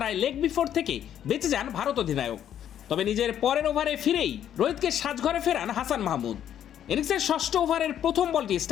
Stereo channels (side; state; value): right; quieter; 10.2 dB